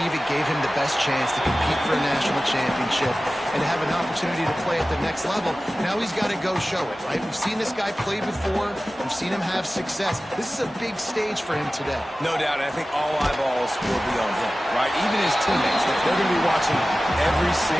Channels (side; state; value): both; normal; correlation 0.96